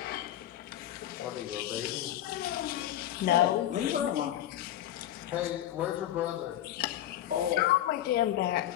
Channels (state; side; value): quieter; right; 12.5 dB